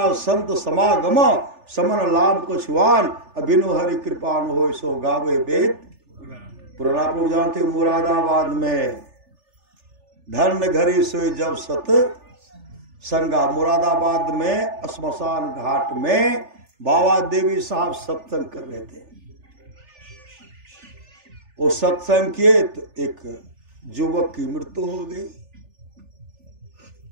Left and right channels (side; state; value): left; late; 3.4 ms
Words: संत समागम समन लाभ को छुआन, अभिनो हरि कृपा न हो सो गावे वेद पुराना। आप लोग जानते मुरादाबाद में धर्म घरी सोई जब सत संगा, मुरादाबाद में श्मशान घाट में बाबा देवी साहब सत्संग कर रहे थे। वो सत्संग किए तो एक युवक की मृत्यु हो गई।